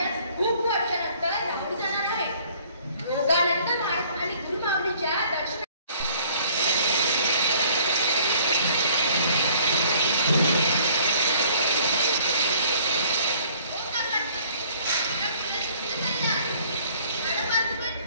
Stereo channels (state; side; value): inverted; both; correlation -0.57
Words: खूप वर्षानंतर राहून जाणार आहे. योगानंद महाराज आणि गुरुमाऊलीच्या दर्शन